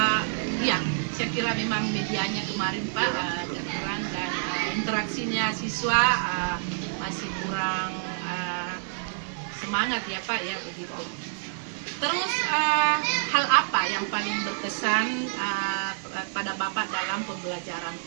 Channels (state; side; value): silent; left; 58 dB below the other